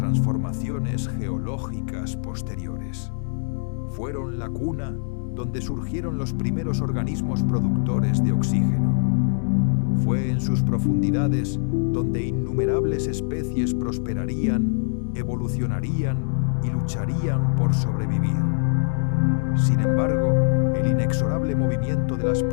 geológicas posteriores. Fueron la cuna donde surgieron los primeros organismos productores de oxígeno. Fue en sus profundidades donde innumerables especies prosperarían, evolucionarían y lucharían por sobrevivir. Sin embargo, el inexorable movimiento de las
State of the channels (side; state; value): right; silent; digital silence